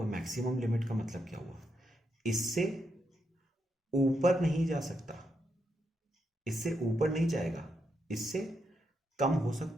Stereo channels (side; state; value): both; normal; correlation 0.82